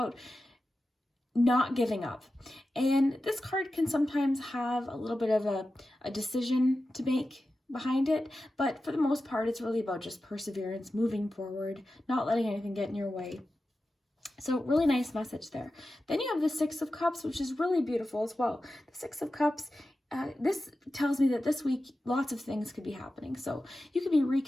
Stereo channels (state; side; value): normal; both; correlation 0.93